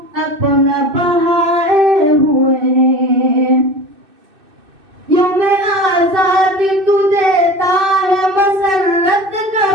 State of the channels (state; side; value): late; left; 2.6 ms